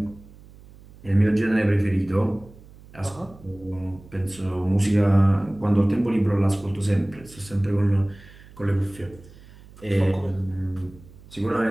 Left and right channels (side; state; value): right; noise; hum, 22 dB below the sound